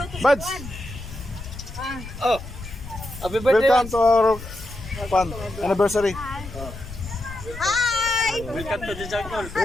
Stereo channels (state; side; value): noise; left; rumble, 13 dB below the sound